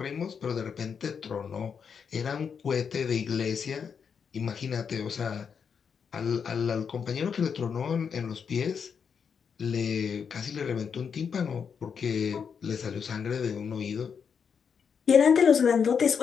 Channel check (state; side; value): quieter; right; 6.6 dB